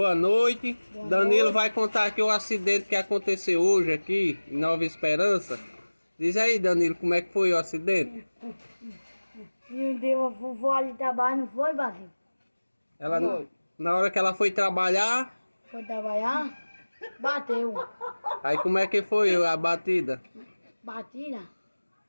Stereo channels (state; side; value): inverted; both; correlation -1.00